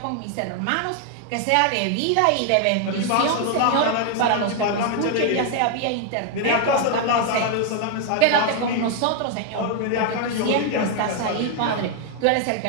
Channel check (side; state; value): both; different; correlation 0.00